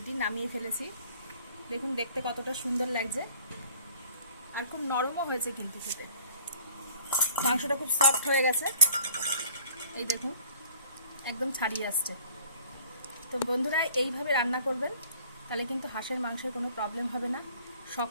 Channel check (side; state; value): both; inverted; correlation -0.51